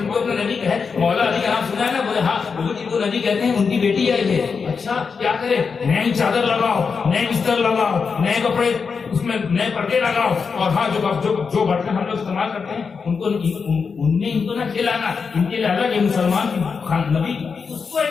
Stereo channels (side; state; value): right; quieter; 5.5 dB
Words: کو اپنا نبی کہے, مولا علی کا نام سنا ہے نا, بولے ہاں وہ جن کو نبی کہتے ہیں ان کی بیٹی آئی ہے. اچھا کیا کرے؟ نئی چادر لگاؤ, نئے بستر لگاؤ, نئے کپڑے اس میں نئے پردے لگاؤ, اور ہاں جو برتن ہم لوگ استعمال کرتے ہیں ان کو ان میں ان کو نہ کھلانا. ان کے لیے الگ ہے مسلمان نبی, اس کو